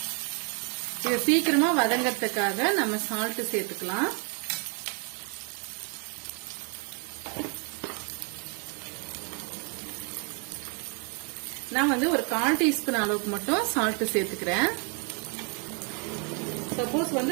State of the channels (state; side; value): quieter; left; 36.5 dB